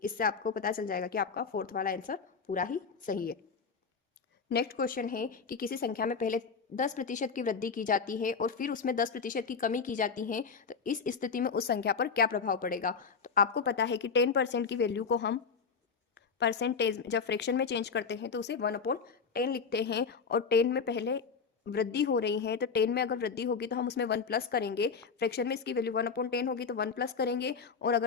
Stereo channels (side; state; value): right; quieter; 5.5 dB